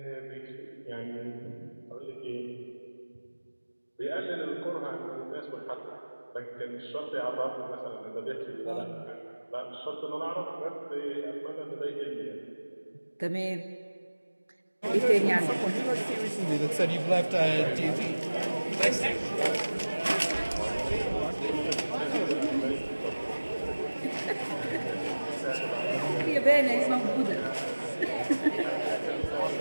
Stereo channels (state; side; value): inverted; both; correlation -1.00